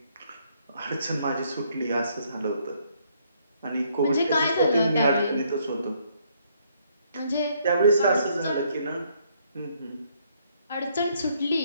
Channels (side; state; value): both; inverted; correlation -0.69